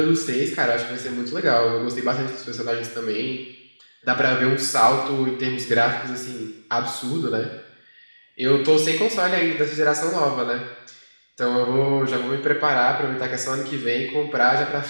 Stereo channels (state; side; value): inverted; both; correlation -1.00